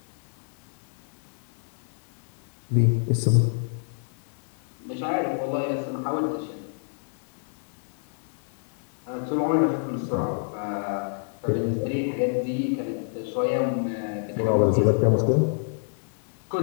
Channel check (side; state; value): right; silent; digital silence